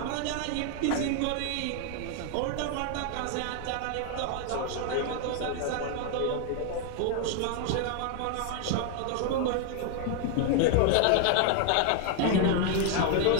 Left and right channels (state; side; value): different; both; correlation 0.00